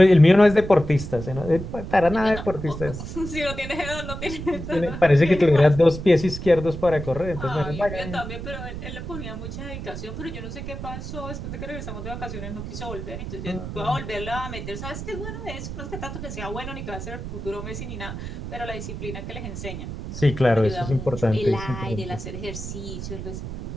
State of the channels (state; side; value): noise; right; rumble, 8 dB below the sound